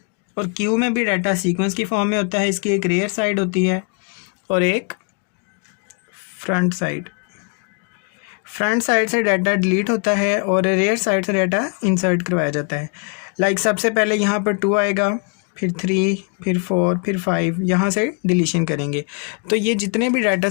और क्यू में भी डाटा सीक्वेंस की फॉर्म में होता है। इसकी एक रेयर साइड होती है और एक फ्रंट साइड। फ्रंट साइड से डाटा डिलीट होता है और रेयर साइड से डाटा इंसर्ट करवाया जाता है। लाइक सबसे पहले यहाँ पर 2 आएगा, फिर 3, फिर 4, फिर 5, यहाँ से डिलीशन करेंगे। तो ये जितने भी डाटा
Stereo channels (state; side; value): quieter; right; 38.2 dB